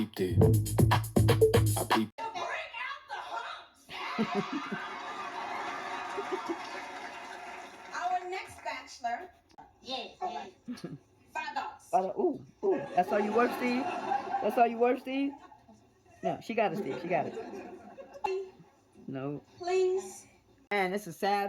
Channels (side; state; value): both; identical; correlation 1.00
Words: it. I peeped. Bring out the humps. Our next bachelor. Yes. $5. Ooh. That's all you worth, Steve? That's all you worth, Steve? No, she got it, Steve. She got it. No. Please. Man, this is